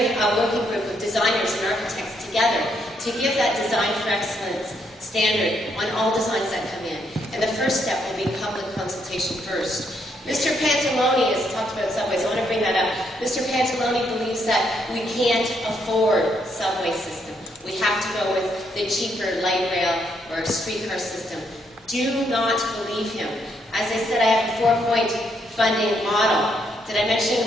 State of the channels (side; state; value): both; normal; correlation 0.75